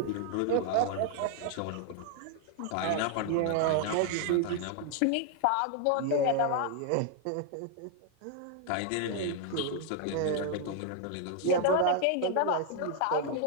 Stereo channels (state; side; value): different; both; correlation 0.00